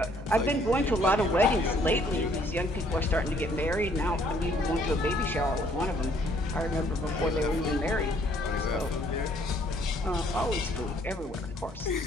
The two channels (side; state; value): both; normal; correlation 0.63